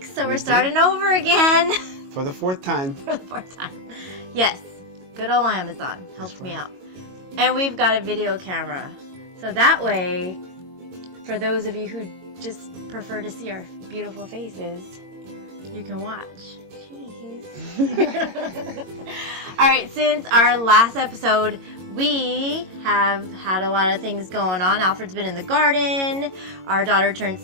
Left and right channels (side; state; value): left; late; 22 ms